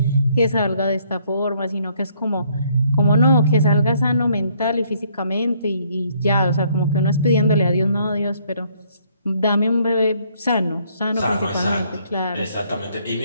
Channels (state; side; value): inverted; both; correlation -0.66